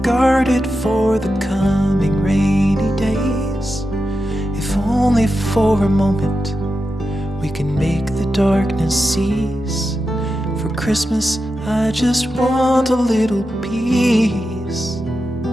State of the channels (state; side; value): normal; both; correlation 0.90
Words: guarded for the coming rainy days. If only for a moment we can make the darkness cease. For Christmas I just want a little peace.